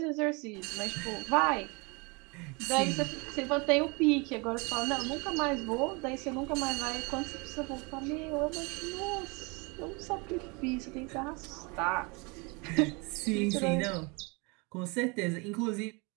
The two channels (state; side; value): quieter; left; 29.2 dB